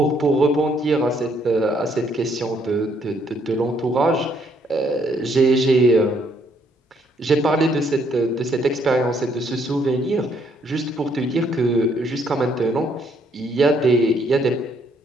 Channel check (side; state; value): both; normal; correlation 0.69